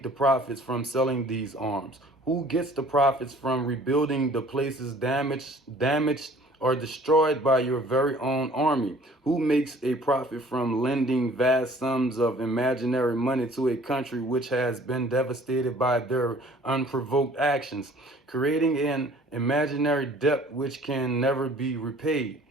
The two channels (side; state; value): both; normal; correlation 0.52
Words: the profits from selling these arms? Who gets the profits from rebuilding the places damaged or destroyed by your very own army? Who makes a profit from lending vast sums of imaginary money to a country which has been devastated by their unprovoked actions, creating an imaginary debt which can never be repaid?